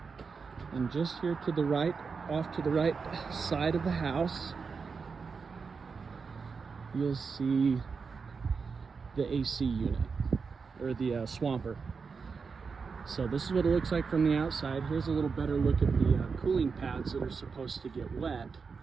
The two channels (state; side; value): quieter; left; 5.2 dB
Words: and just here to the right, off to the right side of the house, you'll see the AC unit, or the swamper. So this is what it looks like from the outside. Here's a little better look at the cooling pads that are supposed to get wet